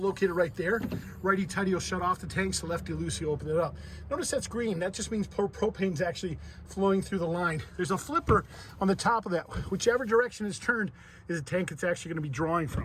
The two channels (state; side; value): identical; both; correlation 1.00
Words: right there. Righty tighty will shut off the tanks, so lefty loosey open it up. Notice that's green. That just means propane's actually flowing through the line. There's a flipper on the top of that. Whichever direction it's turned is a tank it's actually going to be drawing